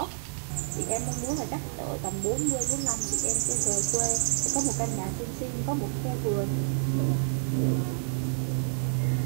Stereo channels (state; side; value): silent; left; digital silence